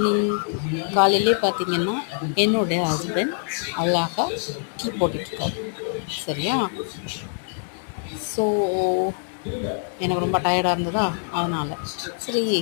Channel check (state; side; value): silent; right; 62 dB below the other